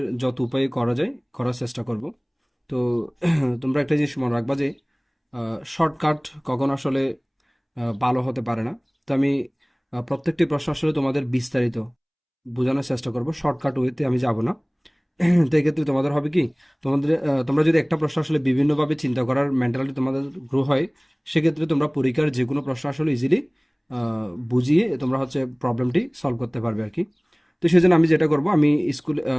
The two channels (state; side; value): identical; both; correlation 1.00